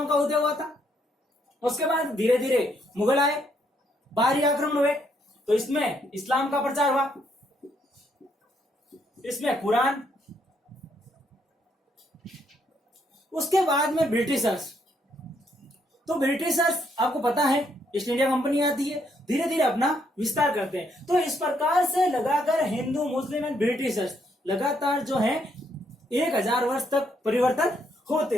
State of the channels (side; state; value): both; normal; correlation 0.73